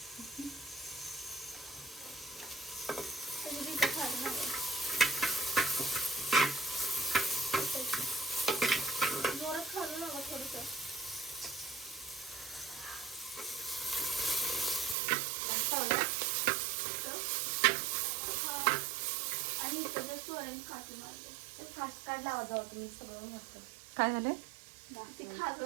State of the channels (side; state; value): left; drops out; at 15.0 s